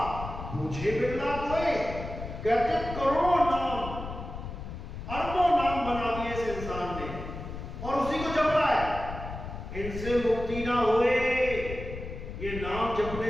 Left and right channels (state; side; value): noise; left; rumble, 9 dB below the sound